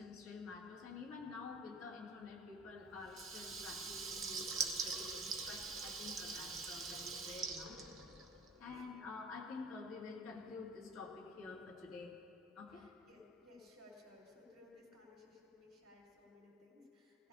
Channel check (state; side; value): normal; both; correlation 0.43